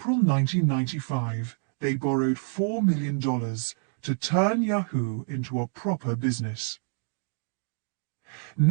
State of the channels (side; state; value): left; silent; 57 dB below the other